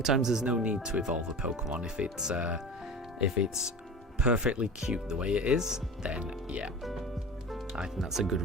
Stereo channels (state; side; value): normal; both; correlation 0.33